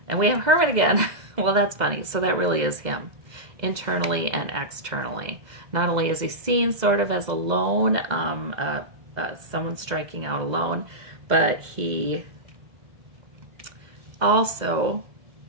And we have Hermit again. Well, that's funny. So that really is him, internally and externally. Not only is he seen sort of as alone, someone striking out alone, but he also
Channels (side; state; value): left; late; 2.0 ms